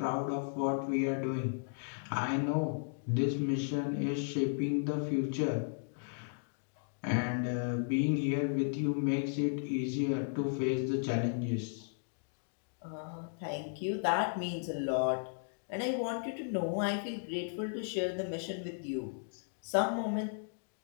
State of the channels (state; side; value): silent; right; digital silence